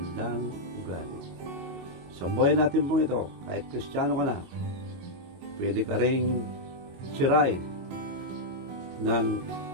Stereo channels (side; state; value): left; late; 22 ms